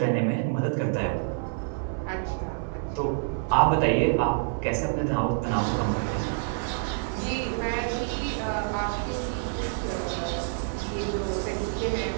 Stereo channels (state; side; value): silent; left; 60 dB below the other